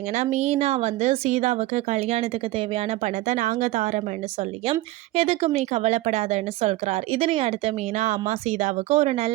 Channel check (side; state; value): left; quieter; 17.6 dB